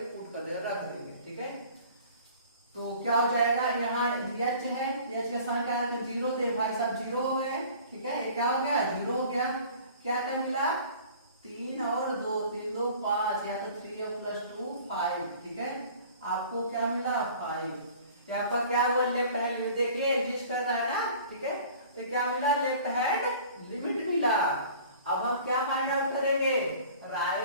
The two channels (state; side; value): inverted; both; correlation -0.47